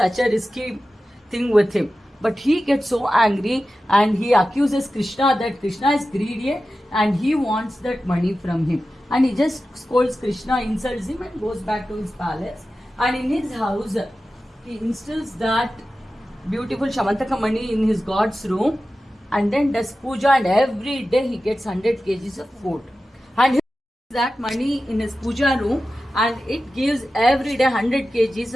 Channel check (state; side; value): normal; both; correlation 0.94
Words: a risky thing with him. But he gets so angry and he accuses Krishna that Krishna is greedy and he wants that money from him. And he just scolds Krishna, insults him and goes back to his palace. And in his house, he instills that beautiful Shamantaka Mani in his god's room and then does puja, and every day he gets 100 kgs of food. And he puts that money in his puja room and it gives every day 100 kgs